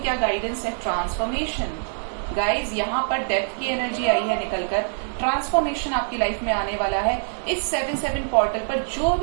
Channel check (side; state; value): left; silent; digital silence